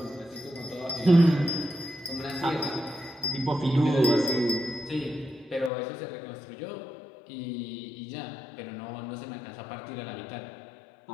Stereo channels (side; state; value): right; drops out; at 5.7 s